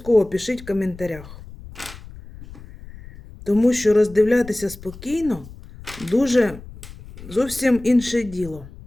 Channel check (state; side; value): noise; left; rumble, 17 dB below the sound